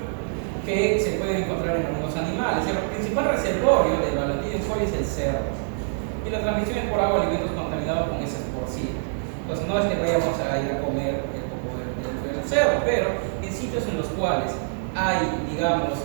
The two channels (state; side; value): silent; left; digital silence